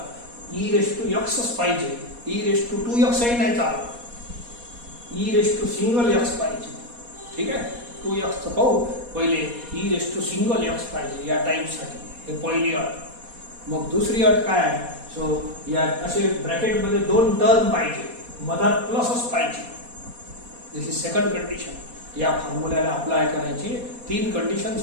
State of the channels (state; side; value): late; left; 4.2 ms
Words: ई रेस टू एक्सच पाहिजे. ई रेस टू 2x नाही चालत, e raise to single x पाहिजे. ठीक आहे, 2x पाहू पहिले. E raise to single x पाहिजे या टाईपसाठी, हे पहिली अट. मग दुसरी अट काय आहे? सो या असे ब्रॅकेटमध्ये 2 टर्म पाहिजे, मधात प्लसच पाहिजे. This is second condition. या फॉर्म्युल्याला अप्लाय करायची 3 कंडिशन